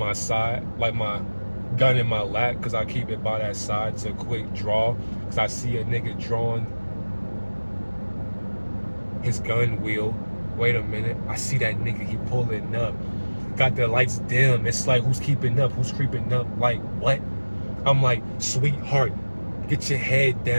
side, like my gun in my lap because I keep it by that side to quick draw because I see a nigga drawing his gun wheel. Wait a minute, I see that nigga, he pulling up. Got the lights dim. It's like, who's keeping up? Who's creeping up? Like, what? I'm like, sweetheart, get your head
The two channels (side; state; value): both; inverted; correlation -1.00